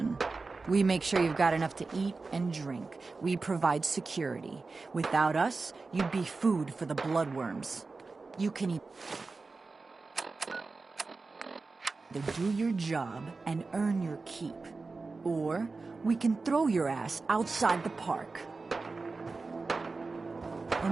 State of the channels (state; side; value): quieter; left; 3.9 dB